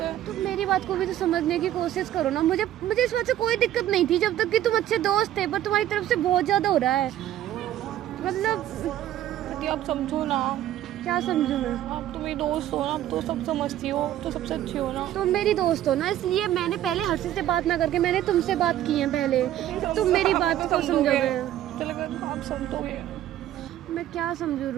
तुम मेरी बात को भी तो समझने की कोशिश करो ना। मुझे इस बात से कोई दिक्कत नहीं थी जब तक कि तुम अच्छे दोस्त थे, पर तुम्हारी तरफ से बहुत ज़्यादा हो रहा है। मतलब आप समझो ना। क्या समझूं मैं? आप तो मेरी दोस्त हो ना, आप तो सब समझती हो, तो सबसे अच्छी हो ना। तुम मेरी दोस्त हो ना, इसलिए मैंने पहले हर्षित से बात ना करके मैंने तुमसे बात की है पहले। तुम मेरी बात को समझोगे? आप समझोगे? मैं क्या समझूं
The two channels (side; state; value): left; quieter; 12.5 dB